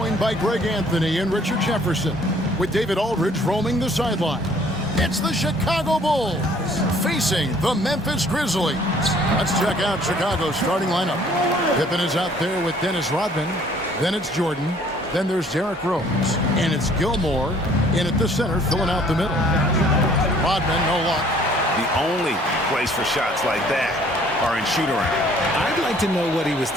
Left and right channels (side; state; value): both; normal; correlation 0.58